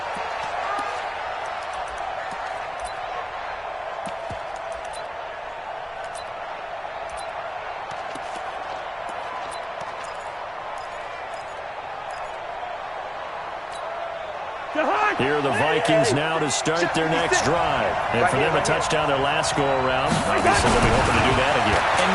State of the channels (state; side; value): identical; both; correlation 1.00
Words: Here are the Vikings now to start their next drive. And for them, a touchdown their last go-around. Obviously, they'll be hoping to do that again. And